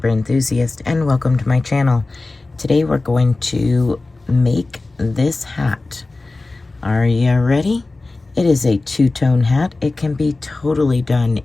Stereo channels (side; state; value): right; quieter; 3.3 dB